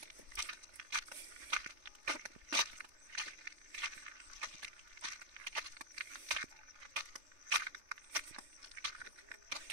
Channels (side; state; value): left; late; 3.3 ms